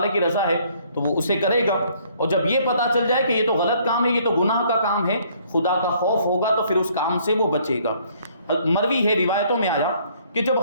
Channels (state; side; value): inverted; both; correlation -0.63